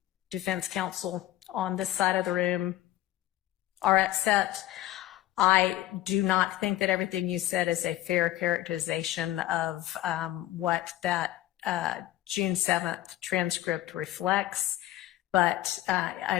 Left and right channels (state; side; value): quieter; right; 15.0 dB